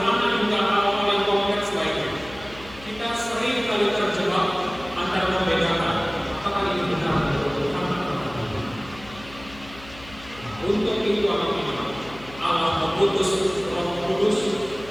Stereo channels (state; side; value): noise; left; hum, 19 dB below the sound